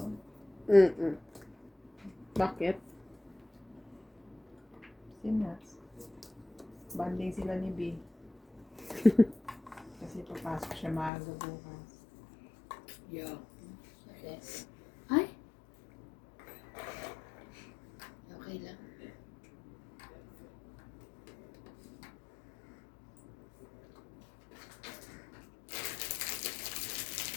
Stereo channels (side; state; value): right; drops out; at 11.1 s